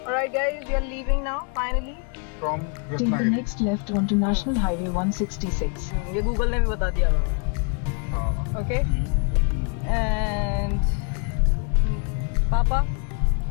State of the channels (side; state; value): right; quieter; 38.1 dB